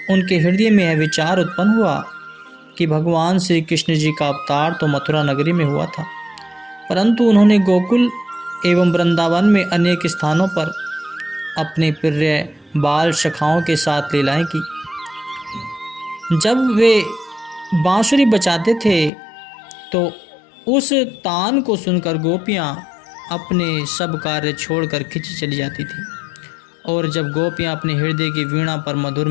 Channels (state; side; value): drops out; right; at 19.1 s